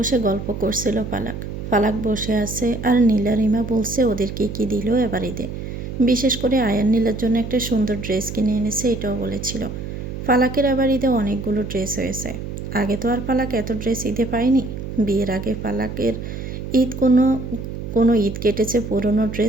গল্প করছিল ফালাক। ফালাক বসে আছে আর নীলা রিমা বলছে ওদেরকে কি দিল এবার ঈদে। বিশেষ করে আয়ান নীলার জন্য একটা সুন্দর ড্রেস কিনে এনেছে এটাও বলেছিল। ফালাকের এবার ঈদে অনেকগুলো ড্রেস হয়েছে। আগে তো আর ফালাক এত ড্রেস ঈদে পায়নি। বিয়ের আগে ফালাকের ঈদ কোনো কোনো ঈদ কেটেছে পুরনো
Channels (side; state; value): right; noise; hum, 7 dB below the sound